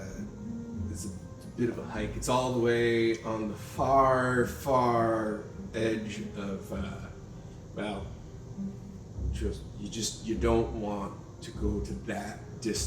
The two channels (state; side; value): identical; both; correlation 1.00